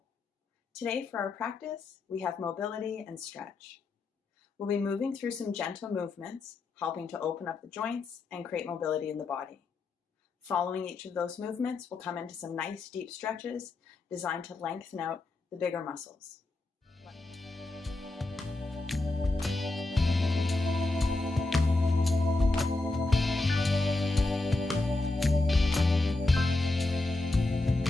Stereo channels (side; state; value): right; quieter; 3.1 dB